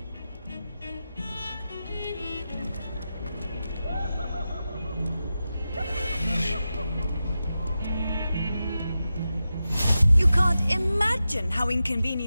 You can't imagine how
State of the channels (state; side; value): inverted; both; correlation -0.91